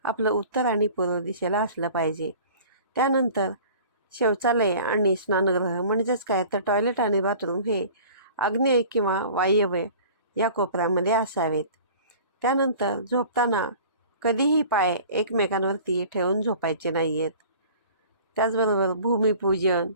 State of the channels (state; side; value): inverted; both; correlation -0.44